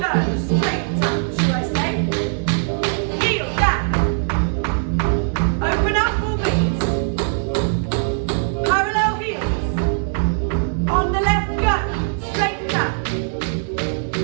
Straight tap, should I say. Heel down. Open up, ball beats. Parallel heels. On the left, go. Straight tap.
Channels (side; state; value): left; silent; 65 dB below the other